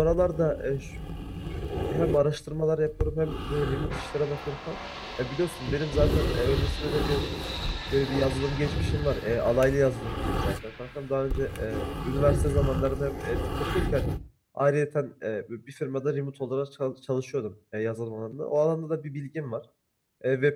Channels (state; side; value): identical; both; correlation 1.00